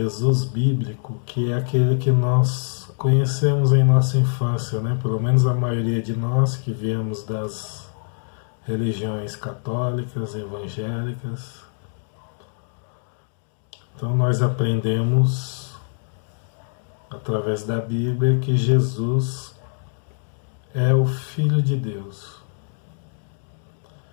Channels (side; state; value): right; silent; 63 dB below the other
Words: bíblico, que é aquele que nós conhecemos em nossa infância, né? Pelo menos a maioria de nós que viemos das religiões católicas, evangélicas. Então nós aprendemos através da Bíblia que Jesus é o Filho de Deus.